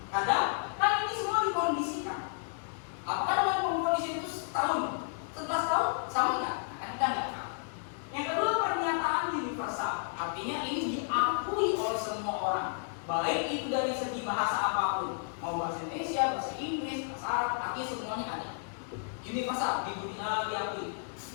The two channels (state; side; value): silent; right; 56 dB below the other